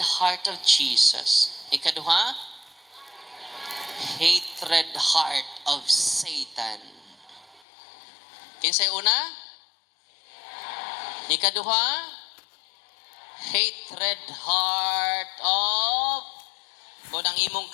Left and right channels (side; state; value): right; drops out; at 7.6 s